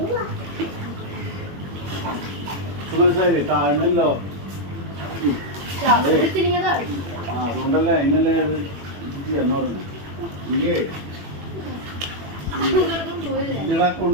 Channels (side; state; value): left; late; 21 ms